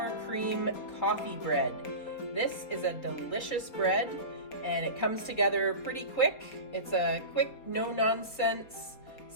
cream coffee bread. This is a delicious bread and it comes together pretty quick. It's a quick, no-nonsense,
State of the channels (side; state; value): right; late; 4.2 ms